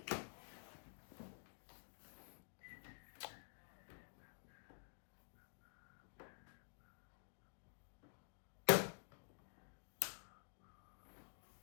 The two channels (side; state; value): right; silent; digital silence